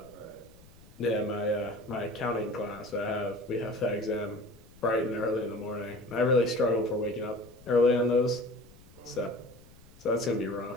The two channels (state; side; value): noise; left; rumble, 24 dB below the sound